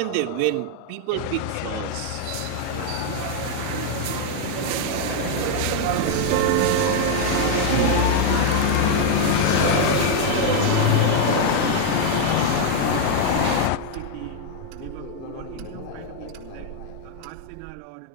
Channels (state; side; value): different; both; correlation 0.00